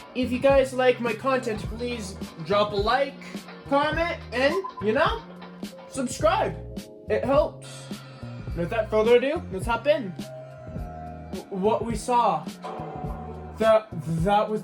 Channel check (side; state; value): both; identical; correlation 1.00